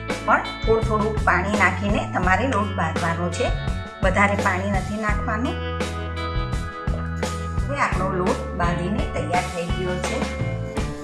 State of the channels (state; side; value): identical; both; correlation 1.00